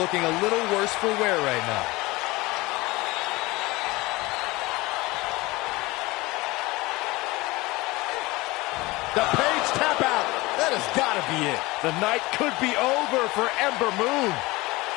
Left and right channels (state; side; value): quieter; right; 21.6 dB